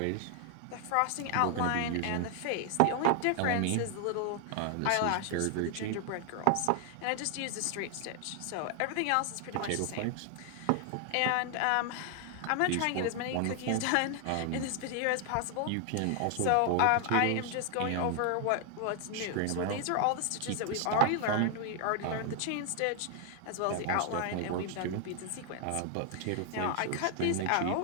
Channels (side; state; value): both; different; correlation 0.00